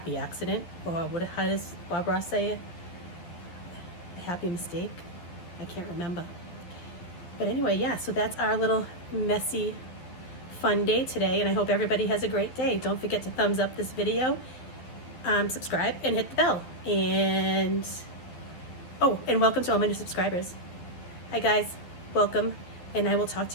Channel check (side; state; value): right; late; 12 ms